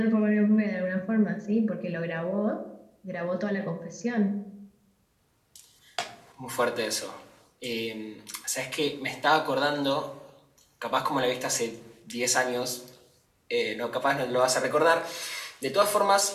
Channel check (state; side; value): identical; both; correlation 1.00